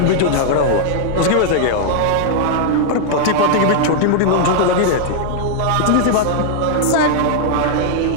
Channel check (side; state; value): both; different; correlation -0.01